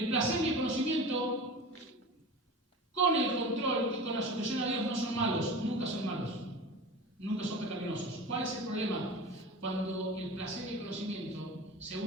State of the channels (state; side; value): normal; both; correlation 0.33